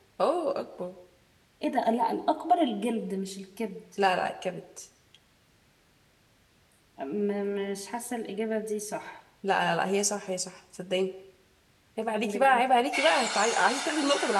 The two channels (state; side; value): identical; both; correlation 1.00